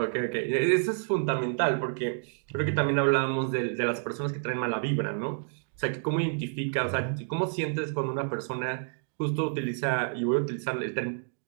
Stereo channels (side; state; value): left; silent; digital silence